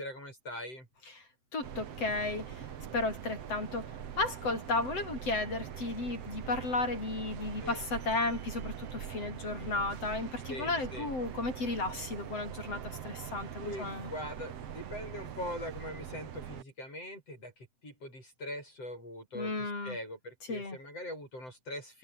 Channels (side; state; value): right; late; 7.8 ms